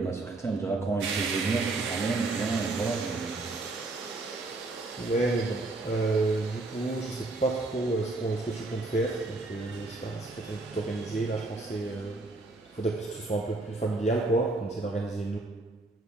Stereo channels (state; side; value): quieter; left; 3.0 dB